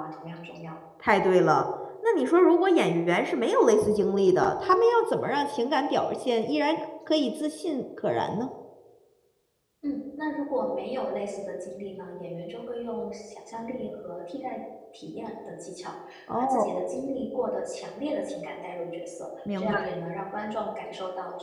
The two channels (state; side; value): identical; both; correlation 1.00